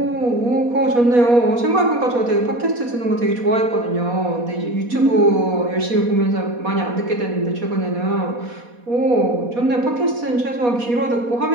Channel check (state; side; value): late; left; 4.2 ms